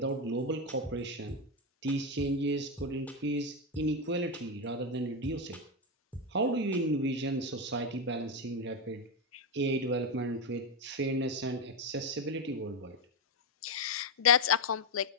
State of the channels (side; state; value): both; normal; correlation 0.08